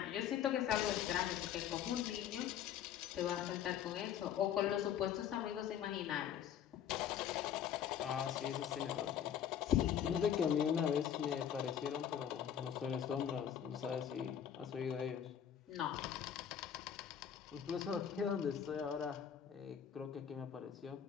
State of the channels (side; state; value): right; quieter; 9.2 dB